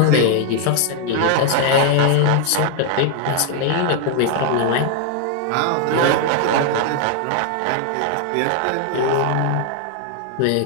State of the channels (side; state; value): both; different; correlation 0.00